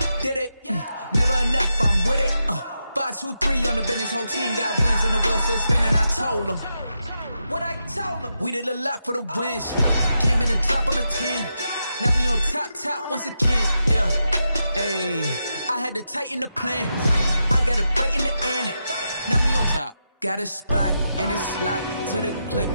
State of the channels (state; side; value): inverted; both; correlation -0.86